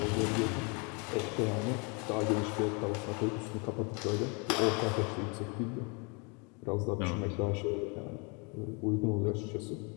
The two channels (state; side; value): quieter; right; 32.8 dB